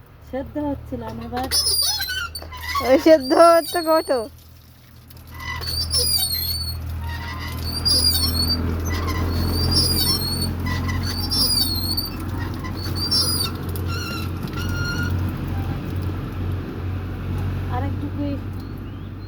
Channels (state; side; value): identical; both; correlation 1.00